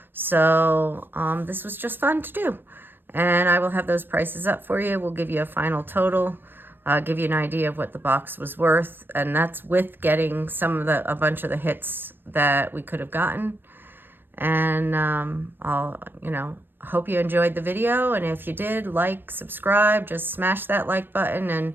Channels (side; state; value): left; late; 0.096 ms